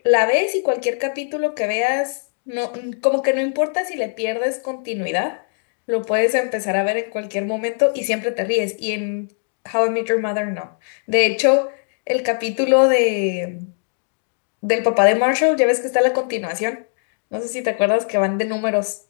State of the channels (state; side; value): silent; right; digital silence